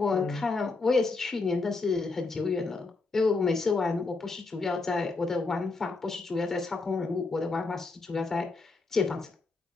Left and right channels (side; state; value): right; quieter; 3.8 dB